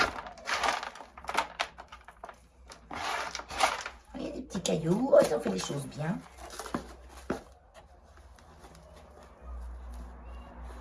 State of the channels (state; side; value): identical; both; correlation 1.00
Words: Il y a des petits cailloux. Oh, ils ont fait les choses bien.